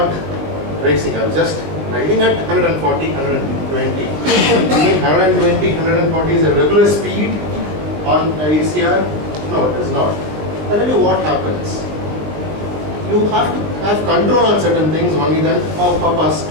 racing. I am just riding at 140, 120. 120, 140 is a regular speed on a ECR? No, it is not. I'll tell you what happens. You have to have control on certain things, only then, oh Papa,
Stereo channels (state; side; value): late; left; 20 ms